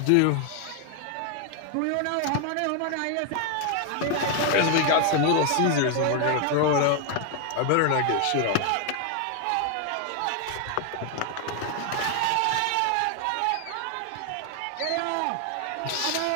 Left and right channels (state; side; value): different; both; correlation 0.00